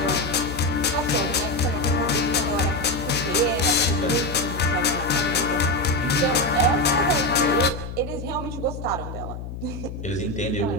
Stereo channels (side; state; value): left; noise; hum, 9 dB below the sound